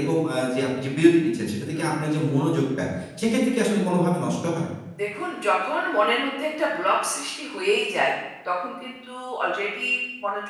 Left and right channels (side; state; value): both; identical; correlation 1.00